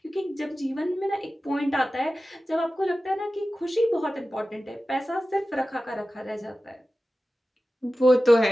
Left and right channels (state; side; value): normal; both; correlation 0.95